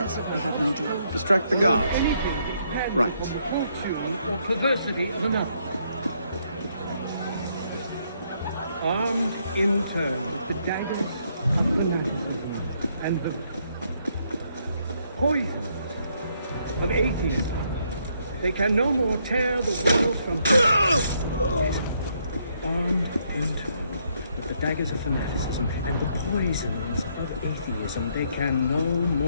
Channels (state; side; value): inverted; both; correlation -0.73